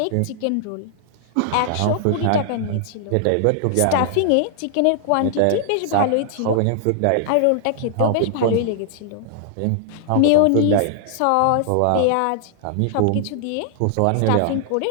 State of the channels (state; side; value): different; both; correlation -0.01